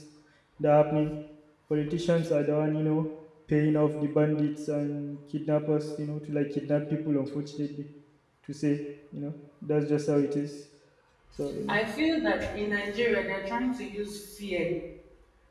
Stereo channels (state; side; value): identical; both; correlation 1.00